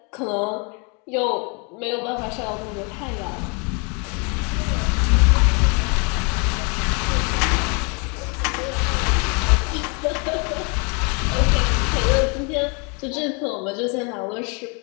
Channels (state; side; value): quieter; right; 33.6 dB